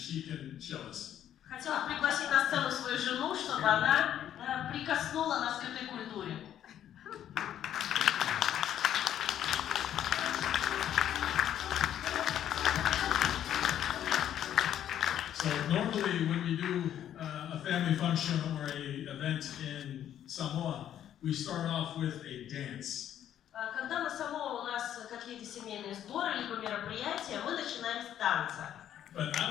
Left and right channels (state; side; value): quieter; right; 10.7 dB